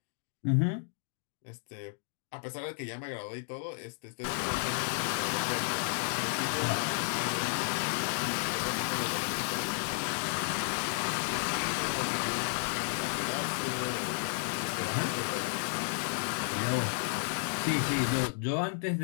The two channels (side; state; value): right; silent; digital silence